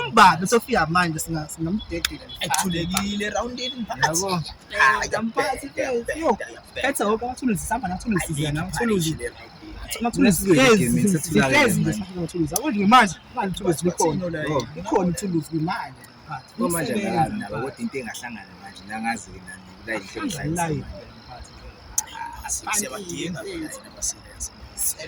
besofika manje singamdedela. Ekuthulekile roundini mphathi. Yabo. Mphathi yo. Phethe wonke amathuluzi sihamba nathuluzi zena amathuluzi. Manje manje ithuluzi likhona. Likhona ithuluzi manje. manje ngalazi nabo kodwa into engahlangana manje nangazi nani la ihlelo Siyabadinga phela abasilenze.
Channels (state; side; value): identical; both; correlation 1.00